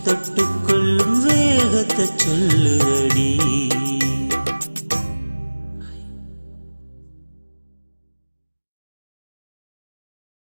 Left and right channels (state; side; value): inverted; both; correlation -1.00